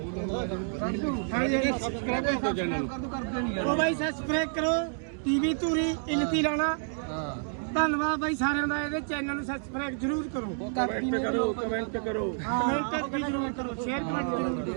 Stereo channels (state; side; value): silent; left; 58 dB below the other